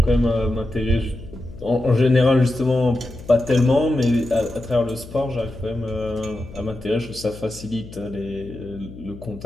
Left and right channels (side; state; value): left; noise; hum, 16 dB below the sound